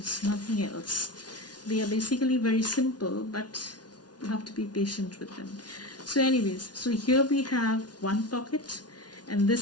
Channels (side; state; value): right; late; 0.69 ms